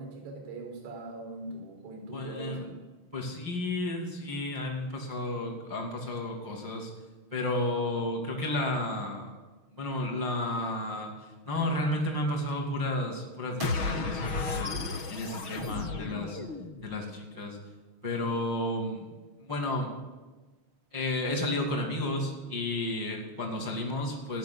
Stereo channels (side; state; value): left; late; 6.2 ms